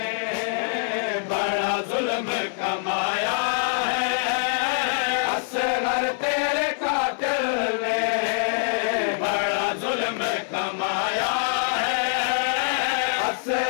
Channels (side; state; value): right; silent; 62 dB below the other